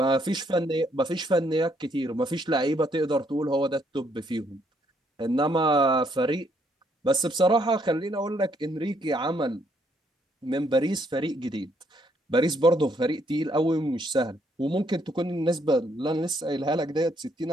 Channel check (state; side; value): normal; both; correlation 0.70